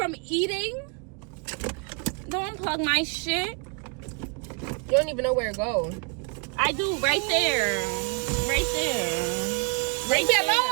eating? Don't unplug my shit. You don't even know where it goes. I do, right there. Right there. Leave me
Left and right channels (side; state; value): left; quieter; 35.7 dB